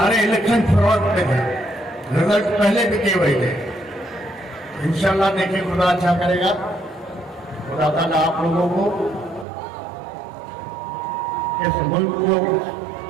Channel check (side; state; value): left; drops out; at 9.5 s